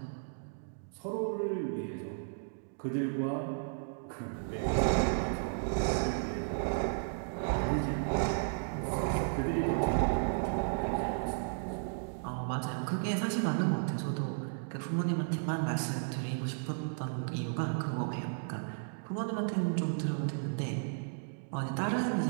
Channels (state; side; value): silent; left; digital silence